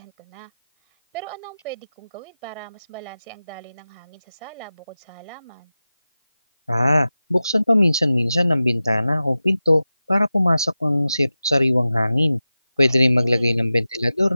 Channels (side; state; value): both; inverted; correlation -0.95